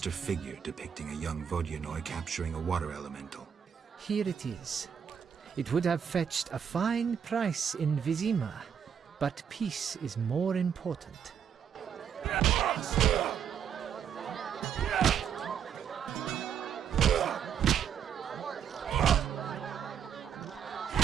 figure depicting a young Vodyanoi capturing a water elemental. Here it is. It would have fetched a fine price in Vizima, but peace is more important.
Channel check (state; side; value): quieter; left; 8.0 dB